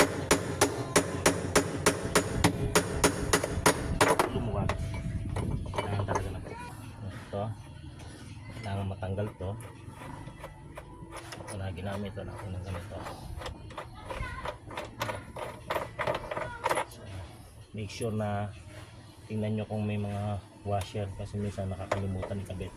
Kailangan matanggal to. Ito na ginamit na natin ng ganito. So, make sure na tingnan nyo kung may mga washer kasi minsan nakakalimutan ikabit.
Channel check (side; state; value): both; identical; correlation 1.00